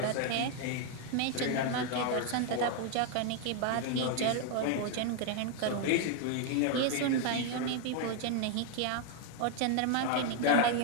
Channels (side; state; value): both; different; correlation 0.00